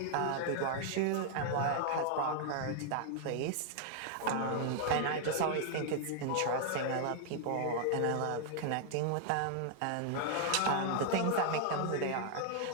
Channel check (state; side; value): different; both; correlation 0.00